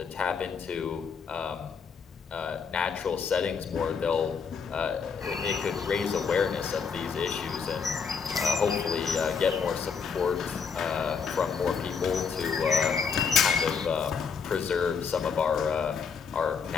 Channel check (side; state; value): right; quieter; 6.0 dB